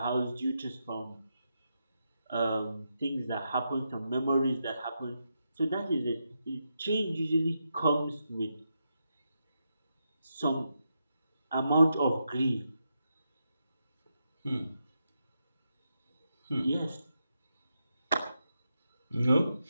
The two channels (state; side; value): inverted; both; correlation -0.85